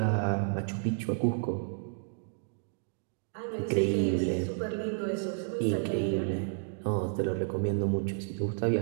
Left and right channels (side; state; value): left; silent; digital silence